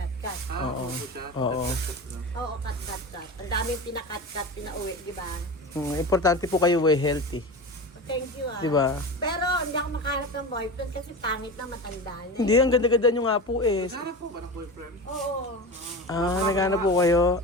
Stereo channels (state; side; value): normal; both; correlation 0.28